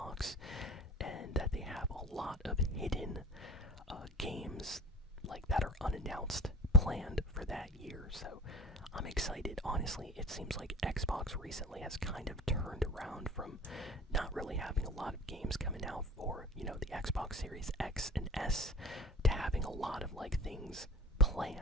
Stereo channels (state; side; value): normal; both; correlation 0.42